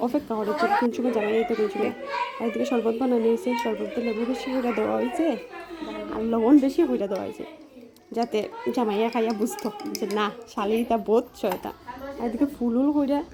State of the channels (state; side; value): identical; both; correlation 1.00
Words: অপেক্ষা করেছে কোন সময় জামাই এই তো কোন সময়। আর এদিকে শরবত বানানো হয়েছে, শরবতে লেবু বেশি করে দেওয়া হয়েছে আর লবণ বেশি করে দেওয়া হয়েছে, যাতে জামাইয়া খাইয়া বুঝতো যে না শালিটা বোধ ছয়টা। আর এদিকে ফুল